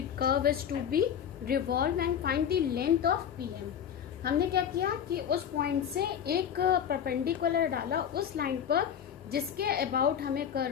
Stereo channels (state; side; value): quieter; right; 8.7 dB